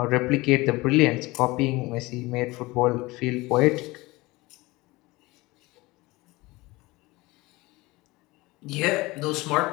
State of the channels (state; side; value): quieter; right; 21.6 dB